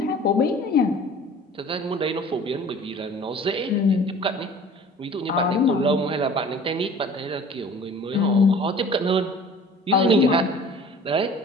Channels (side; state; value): both; normal; correlation 0.46